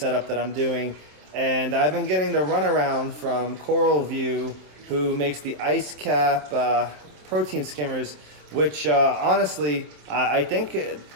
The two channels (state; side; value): late; left; 27 ms